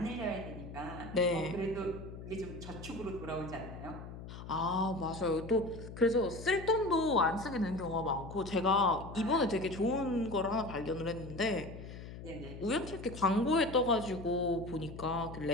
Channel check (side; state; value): left; noise; hum, 12 dB below the sound